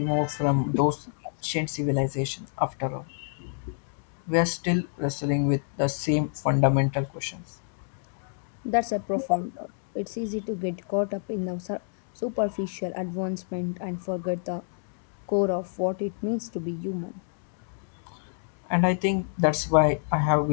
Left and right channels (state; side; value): silent; right; digital silence